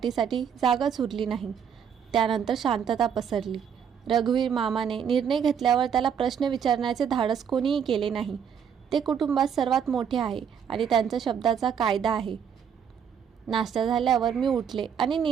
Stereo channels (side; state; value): left; quieter; 7.7 dB